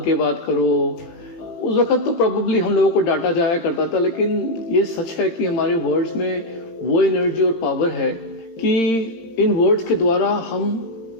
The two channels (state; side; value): late; right; 18 ms